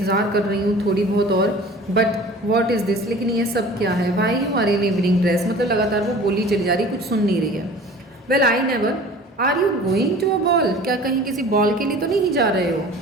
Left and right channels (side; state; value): both; normal; correlation 0.44